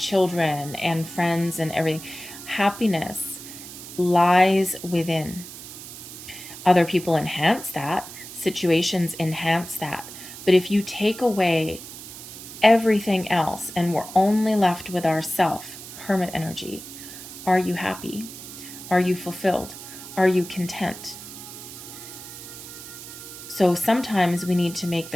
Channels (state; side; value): noise; right; hiss, 13 dB below the sound